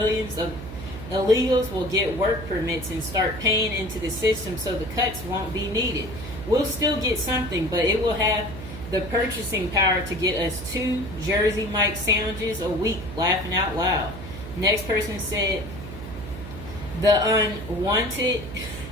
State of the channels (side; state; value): right; noise; hum, 10 dB below the sound